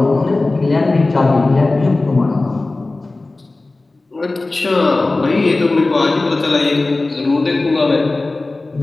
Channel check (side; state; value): right; quieter; 3.2 dB